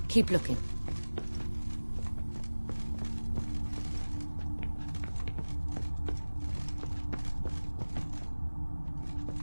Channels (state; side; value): inverted; both; correlation -1.00